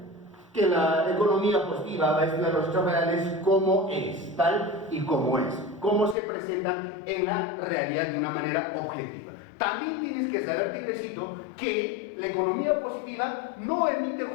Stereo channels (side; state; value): right; drops out; at 6.2 s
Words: que la economía positiva va a estudiar los hechos reales como es, tal y como es, cómo se presentan en la realidad de una manera objetiva. También tienes que saber, tigrecito, que la economía positiva no emite